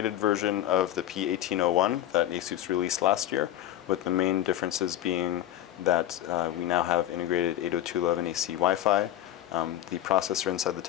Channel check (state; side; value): quieter; right; 12.5 dB